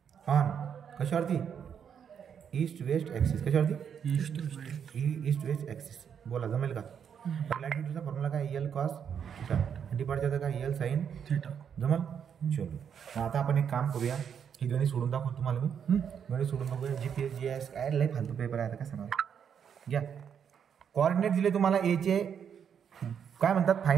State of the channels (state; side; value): quieter; left; 7.8 dB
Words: on कशावरती? East west axis. कशावरती? East west axis. बोला, जमेल का? लॅटिट्यूडचा फॉर्म्युला काय? L cos theta. डिपार्चरचा काय? L sine theta. जमल? चलो, आता आपण एक काम करूया. हे गणित सोडून दाखवतो तुम्हाला मी. गणित सोडून बघूया. GPS GS काय लय फालतू पेपर आहे आता, काय सांगा. घ्या, कोऑर्डिनेट दिले तुम्हाला एचे. काय म्हणतात?